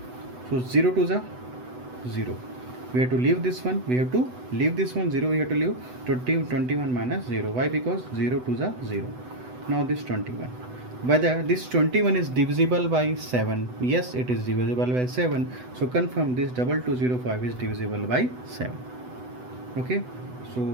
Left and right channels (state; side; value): late; left; 8.0 ms